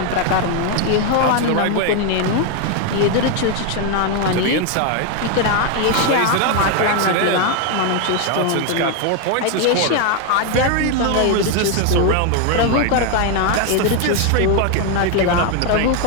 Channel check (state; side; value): different; both; correlation 0.01